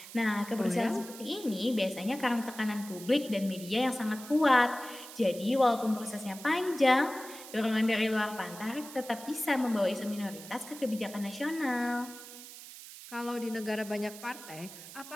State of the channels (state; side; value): noise; right; hiss, 15 dB below the sound